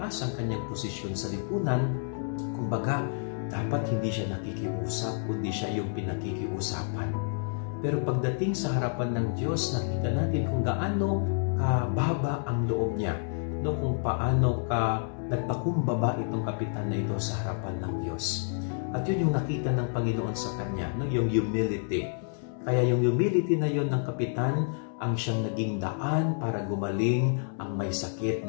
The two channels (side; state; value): right; silent; 58 dB below the other